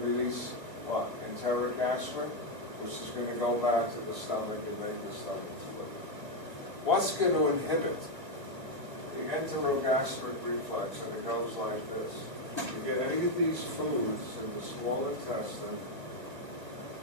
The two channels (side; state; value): left; late; 1.4 ms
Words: what? Enteric aspirin, which is going to go back to the stomach and make the stomach split. What's going to inhibit the enterogastric reflex? And it goes like this. You get any of these foods in the small intestine,